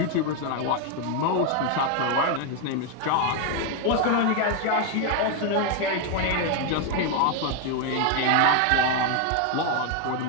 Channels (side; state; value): both; different; correlation 0.01